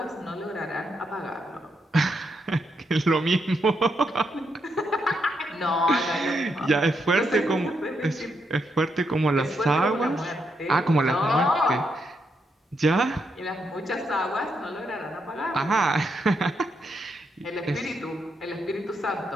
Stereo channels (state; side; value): normal; both; correlation 0.80